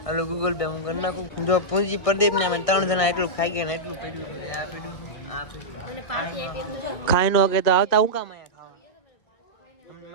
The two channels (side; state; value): right; late; 1.6 ms